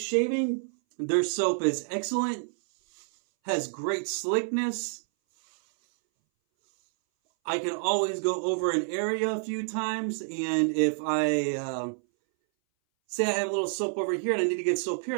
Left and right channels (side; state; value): left; silent; 59 dB below the other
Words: Shaving, their soap is excellent. Has great slickness. I can always go over an area a few times. And if I say I have a little soap over here and I need to get soap